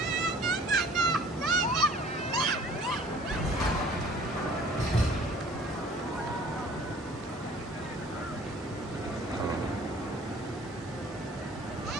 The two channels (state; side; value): normal; both; correlation 0.51